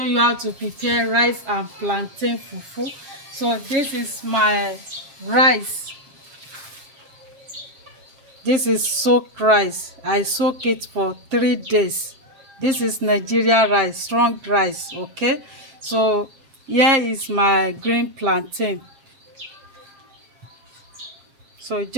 you how to prepare rice and plantain fufu. So this is my rice. This is soaked rice. I soak it for 3 days. This is Nigerian rice, strong rice. Okay, so here is my green plantain. So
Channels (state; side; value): late; left; 7.4 ms